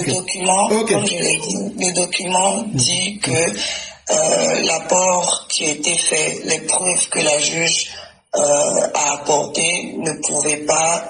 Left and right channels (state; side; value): identical; both; correlation 1.00